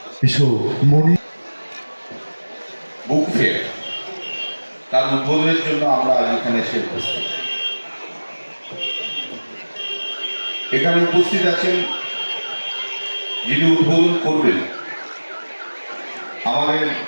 এসো মনি বুক ফেয়ার, তার উদ্বোধনের জন্য আমরা আজ এখানে এসে উপস্থিত। এখানে উপস্থিত আছেন যিনি উদ্বোধন করবেন, আমাদের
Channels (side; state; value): both; inverted; correlation -1.00